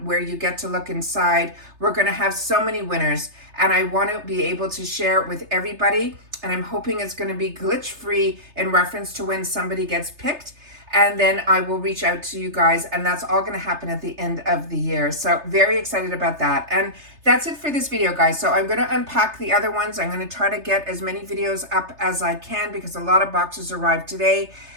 where you get to look inside. We're going to have so many winners and I want to be able to share it with everybody. And I'm hoping it's going to be glitch free in reference to when somebody gets picked. And then I will reach out to you guys, and that's all going to happen at the end of the year. So very excited about that. And that's it for this video, guys. So I'm going to unpack the other ones. I'm going to try to get as many videos up as I can because a lot of boxes arrived today.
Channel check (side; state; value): left; late; 3.3 ms